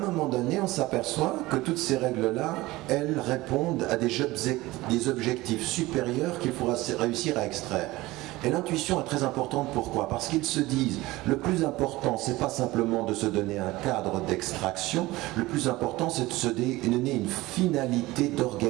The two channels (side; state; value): left; quieter; 19.3 dB